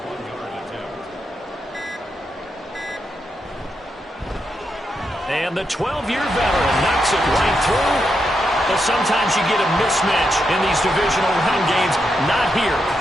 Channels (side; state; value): both; normal; correlation 0.84